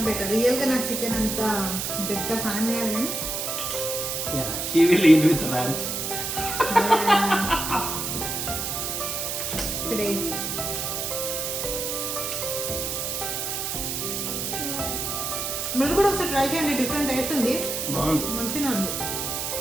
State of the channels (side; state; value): right; noise; hiss, 2 dB below the sound